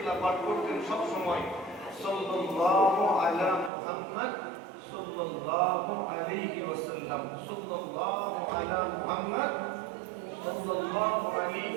পাঠ করতেন সব সময় সাল্লাল্লাহু আলা মুহাম্মদ সাল্লাল্লাহু আলাইহি ওয়াসাল্লাম, সাল্লাল্লাহু আলা মুহাম্মদ সাল্লাল্লাহু আলাইহি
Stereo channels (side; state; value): left; drops out; at 3.7 s